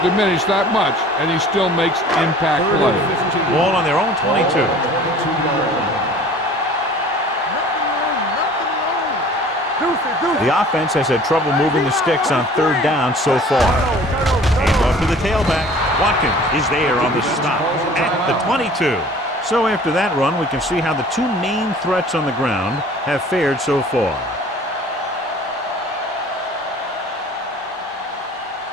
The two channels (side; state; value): both; normal; correlation 0.48